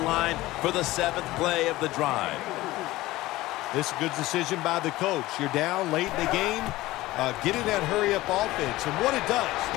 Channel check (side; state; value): right; quieter; 17.9 dB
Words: for the 7th play of the drive. This is a good decision by the coach. You're down late in the game. Get in that hurry-up offense. And what it does,